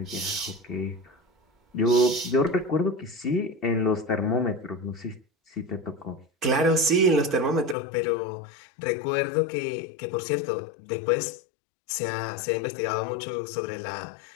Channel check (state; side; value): drops out; right; at 7.8 s